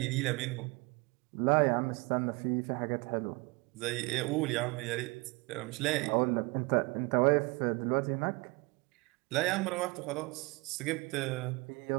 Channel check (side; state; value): left; quieter; 26.2 dB